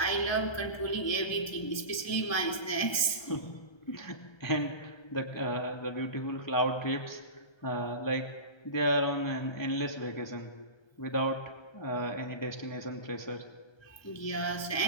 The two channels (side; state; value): right; late; 1.3 ms